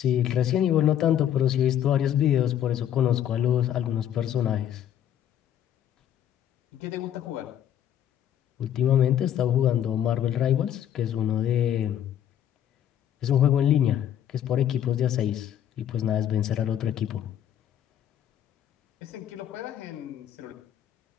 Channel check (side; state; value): right; quieter; 10.4 dB